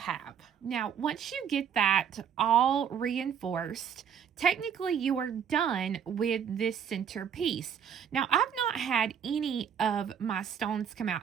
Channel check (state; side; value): quieter; left; 8.0 dB